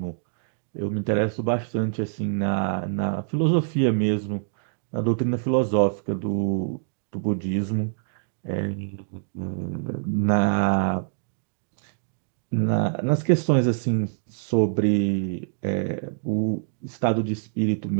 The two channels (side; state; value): left; silent; digital silence